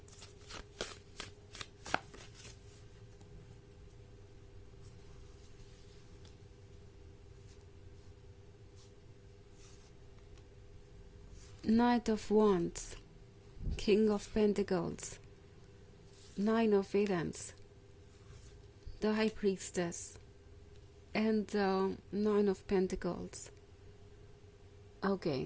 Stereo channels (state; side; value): identical; both; correlation 1.00